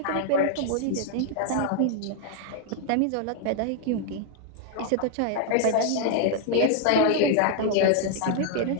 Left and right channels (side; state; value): both; different; correlation 0.00